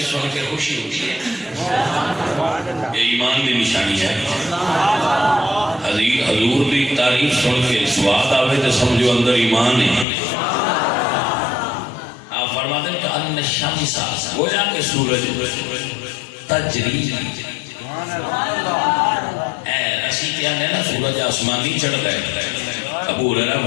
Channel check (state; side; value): drops out; right; at 10.1 s